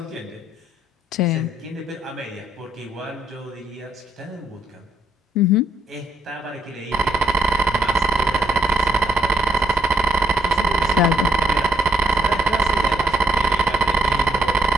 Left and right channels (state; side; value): normal; both; correlation 0.72